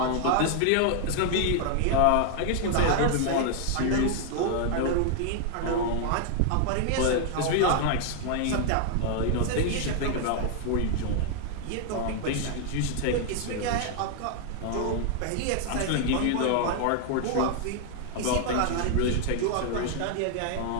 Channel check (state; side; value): different; both; correlation 0.00